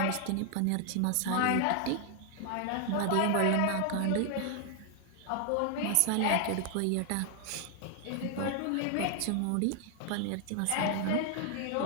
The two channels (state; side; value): different; both; correlation 0.00